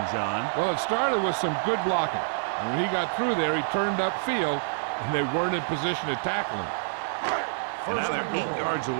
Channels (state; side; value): silent; left; digital silence